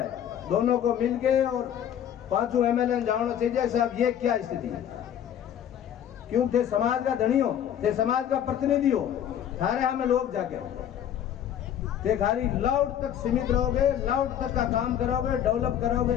दोनों को मिलके और 5 एमएलए जानना चाहिए साहब ये क्या स्थिति है। क्यों थे समाज का धनी हो, थे समाज का प्रतिनिधि हो, थारे हमें लोग जाके थे खाली लाउड तक सीमित रहोगे, लाउड तक का काम करोगे, डेवलप करोगे,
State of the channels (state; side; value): quieter; right; 9.9 dB